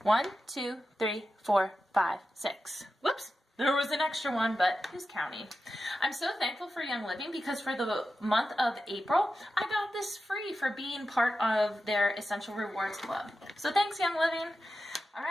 1, 2, 3, 4, 5, 6. Whoops, there was an extra one, but who's counting? I'm so thankful for Young Living because for the month of April, I got this free for being part of their Essential Rewards Club. So thanks, Young Living. All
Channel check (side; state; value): both; normal; correlation 0.92